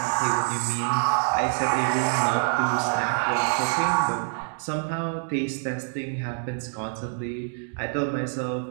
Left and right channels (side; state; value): left; silent; digital silence